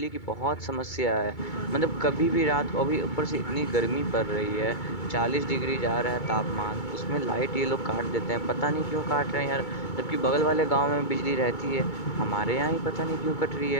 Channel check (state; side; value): late; right; 2.2 ms